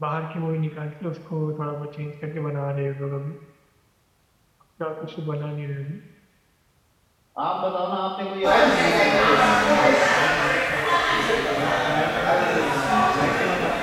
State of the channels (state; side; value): identical; both; correlation 1.00